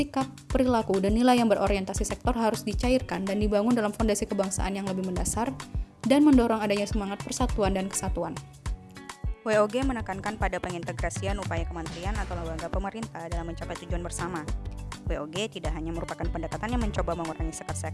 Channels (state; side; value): identical; both; correlation 1.00